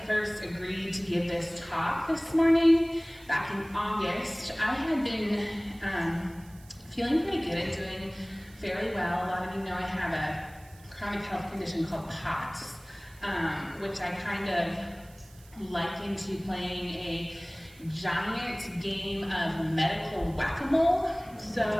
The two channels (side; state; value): right; noise; hiss, 25 dB below the sound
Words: first agreed to give this talk this morning, back in August, I had been feeling pretty good and doing fairly well. A lot of you know I have a chronic health condition called POTS, which I kind of liken to playing a giant game of medical whack-a-mole.